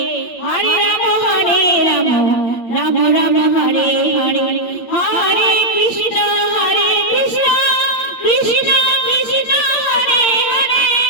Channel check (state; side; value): late; right; 8.7 ms